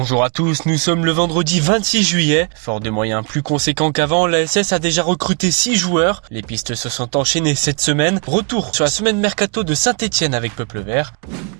à tous, nous sommes le vendredi 26 juillet. Fort de moyens plus conséquents qu'avant, l'ASS a déjà recruté 6 joueurs. Les pistes se sont enchaînées cette semaine. Retour sur la semaine mercato de Saint-Etienne avec Peuple Vert.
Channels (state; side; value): quieter; left; 35.8 dB